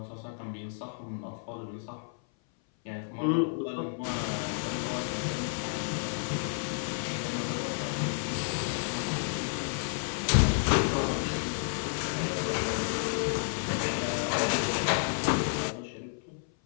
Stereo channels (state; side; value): silent; right; 57 dB below the other